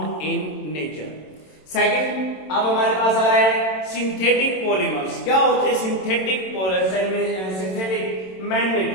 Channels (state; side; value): late; right; 27 ms